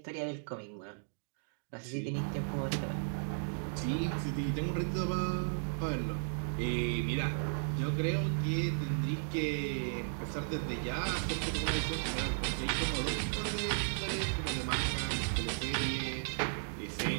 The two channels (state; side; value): silent; left; digital silence